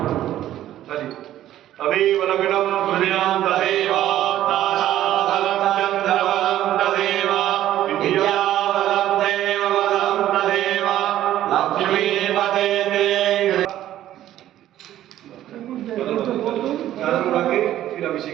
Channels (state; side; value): quieter; left; 12.8 dB